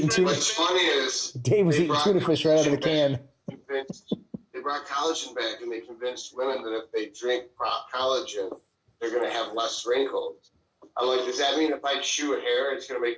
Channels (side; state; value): both; identical; correlation 1.00